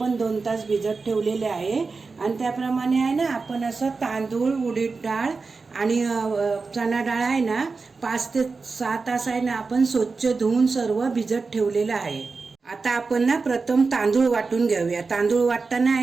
2 तास भिजत ठेवलेले आहे। आणि त्याप्रमाणे आहे ना आपण असं तांदूळ, उडीद डाळ आणि चणा डाळ आहे ना 5 ते 6 तास आहे ना आपण स्वच्छ धुवून सर्व भिजत ठेवलेलं आहे। आता आपण ना प्रथम तांदूळ वाटून घेऊया। तांदूळ वाटताना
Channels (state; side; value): quieter; left; 4.3 dB